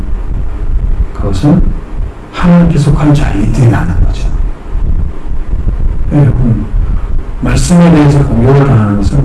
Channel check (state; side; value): identical; both; correlation 1.00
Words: 그것은 하나님께 속한 자이기 때문에 맞는 거죠. 여러분 말씀에 대해서 공격을 당하는